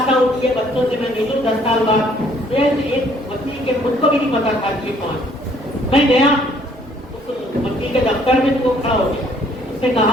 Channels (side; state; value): both; normal; correlation 0.62